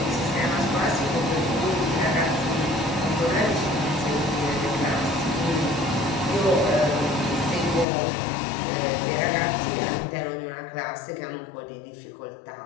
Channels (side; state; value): right; drops out; at 7.9 s